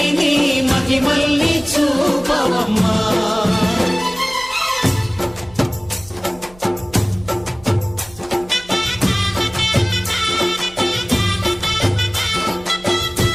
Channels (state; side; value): noise; right; hum, 23 dB below the sound